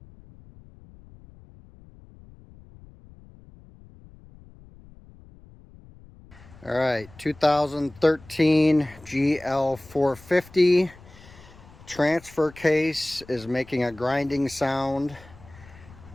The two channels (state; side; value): noise; left; rumble, 22 dB below the sound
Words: All right, 2013 GL450 transfer case is making a grinding sound.